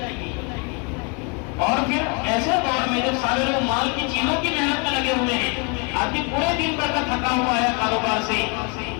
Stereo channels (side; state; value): right; quieter; 32.9 dB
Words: اور پھر ایسے دور میں جب سارے لوگ مال کی چیزوں کی محنت میں لگے ہوئے ہیں, آدمی پورے دن بھر کا تھکا ہوا ہے کاروبار سے,